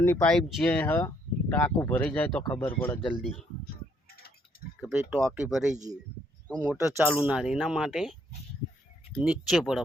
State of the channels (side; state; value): both; normal; correlation 0.69